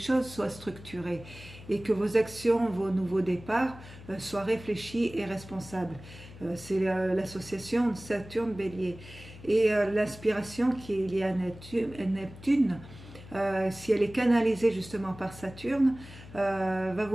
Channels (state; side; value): noise; left; hum, 17 dB below the sound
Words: soient structurées et que vos actions, vos nouveaux départs soient réfléchis et responsables. C'est l'association Saturne-Bélier. Et l'inspiration qui est liée à Neptune, si elle est canalisée justement par Saturne, va